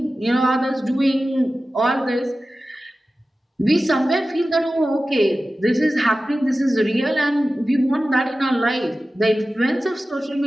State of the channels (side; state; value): both; normal; correlation 0.95